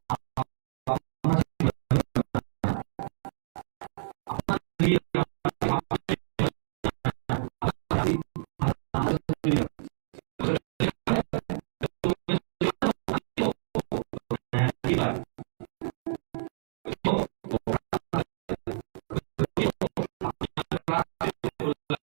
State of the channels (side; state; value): left; silent; digital silence